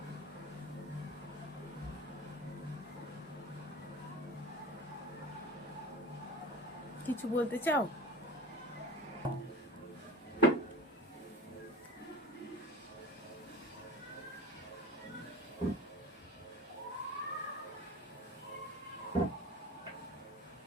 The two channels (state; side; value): normal; both; correlation 0.37